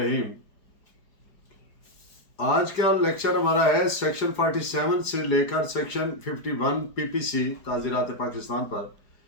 आज का लेक्चर हमारा है सेक्शन 47 से लेकर सेक्शन 51 पीपीसी ताज़ीरात पाकिस्तान पर,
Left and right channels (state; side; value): late; right; 4.9 ms